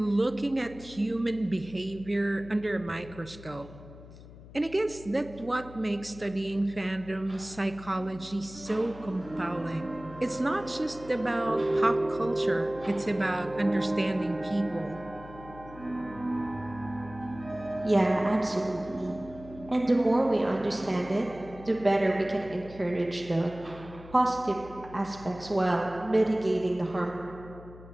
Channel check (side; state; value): left; noise; hum, 17 dB below the sound